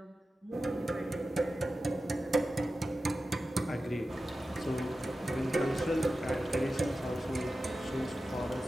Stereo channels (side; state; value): both; normal; correlation 0.93